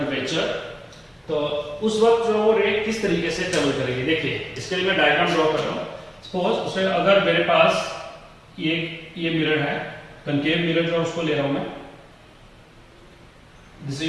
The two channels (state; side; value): identical; both; correlation 1.00